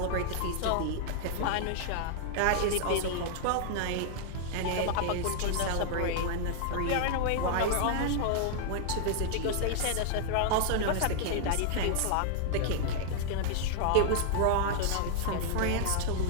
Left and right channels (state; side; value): different; both; correlation -0.01